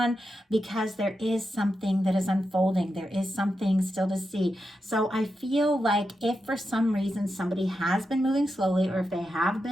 because there is something that is unfolding. There is something still to see. So I feel like if for some reason somebody has been moving slowly, or if they have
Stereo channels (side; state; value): both; normal; correlation 0.88